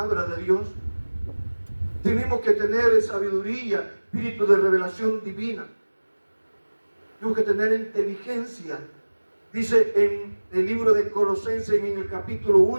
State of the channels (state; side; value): inverted; both; correlation -1.00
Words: de Dios. Tenemos que tener sabiduría, espíritu de revelación divina. Tenemos que tener inteligencia. Dice en el libro de Colosenses, en el capítulo